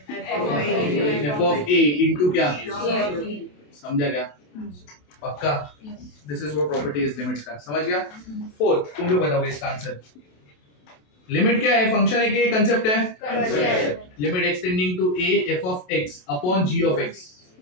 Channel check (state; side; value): late; right; 27 ms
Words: f of a इनटू क्या, समझा क्या, पक्का। This is what property is limits का, समझ गया। फोर्थ, तुम लोग बताओगे इसका आंसर। लिमिट क्या है, फंक्शन है कि कंसेप्ट है, limit extending to a f of x upon g of x।